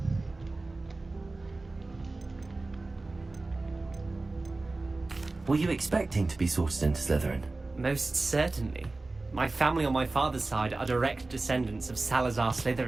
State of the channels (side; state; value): left; quieter; 3.3 dB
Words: Were you expecting to be sorted into Slytherin? Most certainly. My family on my father's side are direct descendants of Salazar